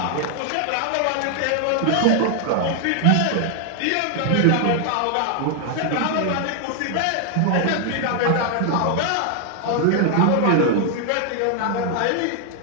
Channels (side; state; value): both; different; correlation 0.00